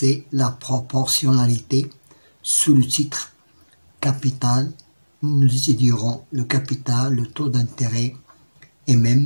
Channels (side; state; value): both; inverted; correlation -1.00